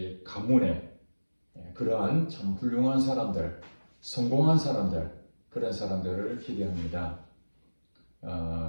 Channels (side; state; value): both; inverted; correlation -1.00